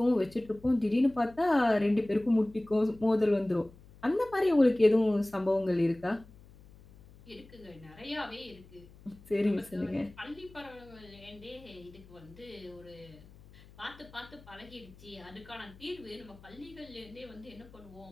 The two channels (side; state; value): left; noise; hum, 22 dB below the sound